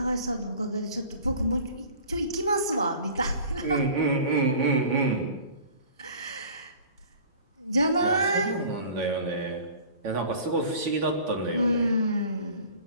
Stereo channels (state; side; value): inverted; both; correlation -0.44